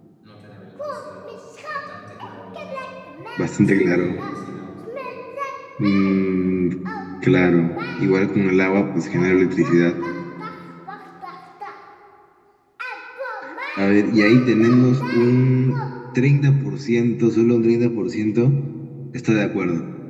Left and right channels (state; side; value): identical; both; correlation 1.00